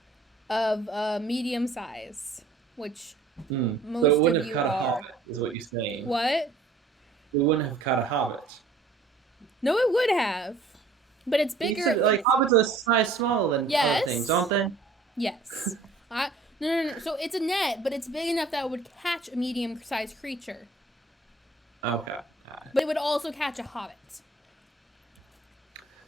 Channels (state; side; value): quieter; left; 3.7 dB